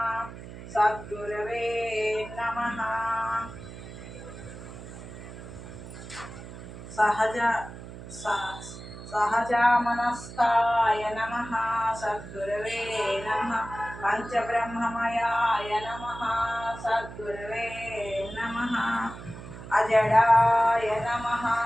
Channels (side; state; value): right; noise; hum, 13 dB below the sound